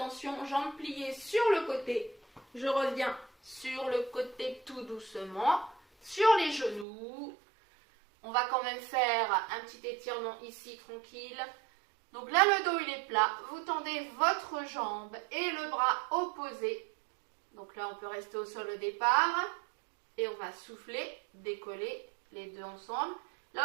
jambes pliées sur le côté. Je reviens sur le côté tout doucement, sur les genoux. On va quand même faire un petit étirement ici, tranquille. Donc là, le dos, il est plat. Vous tendez votre jambe et le bras opposé. Donc là, on peut rester au sol au départ. Et on va souffler, décoller les deux ensemble.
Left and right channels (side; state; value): left; drops out; at 6.9 s